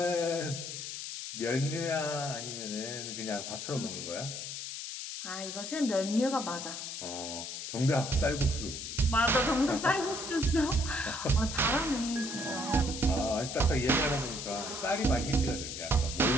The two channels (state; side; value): noise; left; hiss, 7 dB below the sound